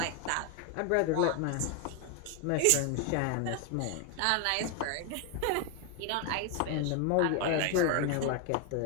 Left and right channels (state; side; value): different; both; correlation 0.01